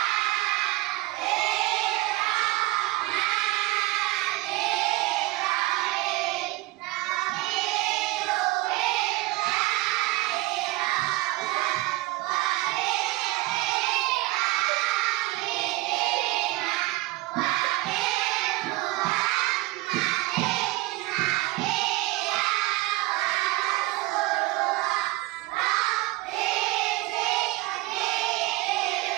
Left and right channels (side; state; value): left; quieter; 20.0 dB